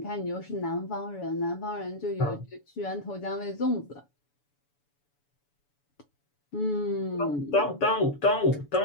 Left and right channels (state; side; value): late; right; 7.0 ms